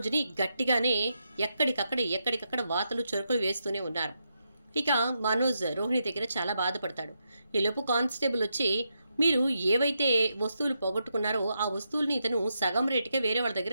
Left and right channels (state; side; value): inverted; both; correlation -0.83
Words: గట్టిగానే ఎక్కడికక్కడ వాతలు చురుకులు వేస్తూనే ఉన్నారు. ఇక మనోజ్ రోహిణి దగ్గర చాలా బాధపడతాడు. ఈలోపు కానిస్టేబుల్ వచ్చి మీరు ఏవైతే వస్తువులు పోగొట్టుకున్నారో ఆ వస్తువుల్ని ఇతను సగం రేటుకే వేరే వాళ్ళ